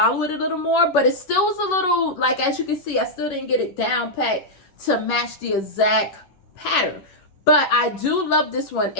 it a little more, but it still was a little, like, as you can see, I still didn't get it down packed to match the exact pattern. But I do love this one.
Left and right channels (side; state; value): right; late; 11 ms